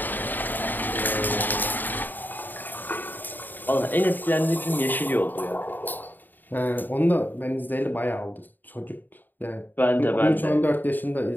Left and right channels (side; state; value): right; late; 0.089 ms